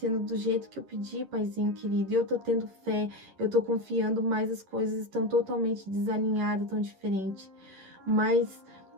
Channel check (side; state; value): left; late; 11 ms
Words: do jeito que eu pedi, Paizinho querido. E eu tô tendo fé, eu tô confiando, mas as coisas estão totalmente desalinhadas, tão diferentes. Mas